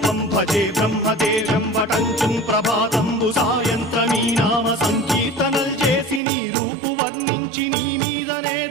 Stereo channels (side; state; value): left; drops out; at 6.2 s